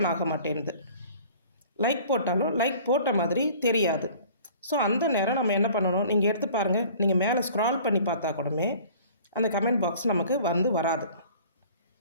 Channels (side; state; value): both; inverted; correlation -0.48